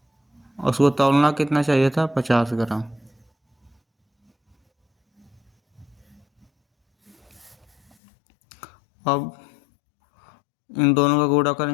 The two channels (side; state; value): right; drops out; at 8.0 s